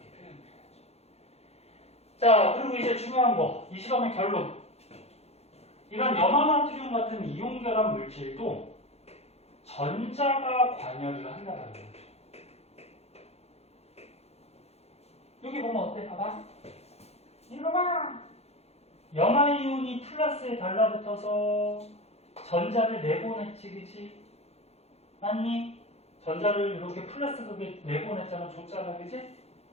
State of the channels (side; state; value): right; late; 0.30 ms